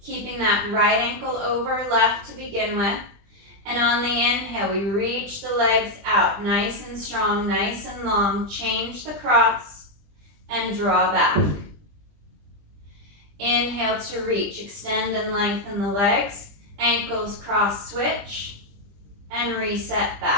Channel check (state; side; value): late; left; 20 ms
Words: keeping that right ankle over left to begin with. And on the inhale, we reach the legs out, nice and strong, nice and long. Change the cross. And draw back. Inhale to reach, extend and lengthen the legs, ankles cross switch, and reset